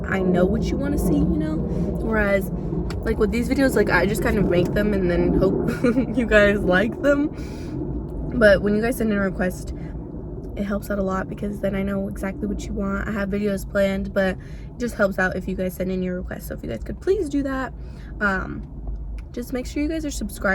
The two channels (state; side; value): identical; both; correlation 1.00